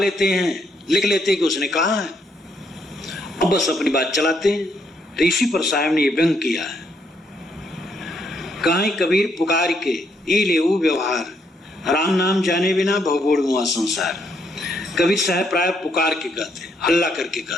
हैं, लिख लेते हैं कि उसने कहा है, अब बस अपनी बात चलाते हैं। तो इसी पर साहब ने ये व्यंग किया है। कहीं कबीर पुकार के ई लेऊ व्यवहार, राम नाम जाने बिना भवगोड़ मुआ संसार। कबीर साहब प्राय पुकार के कहते, हल्ला करके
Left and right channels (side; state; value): both; normal; correlation 0.74